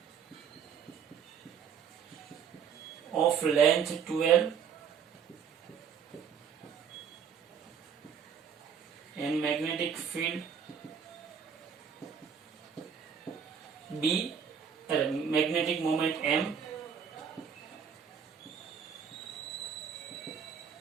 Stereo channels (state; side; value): quieter; left; 7.2 dB